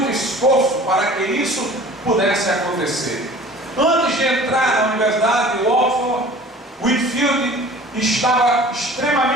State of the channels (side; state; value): both; normal; correlation 0.45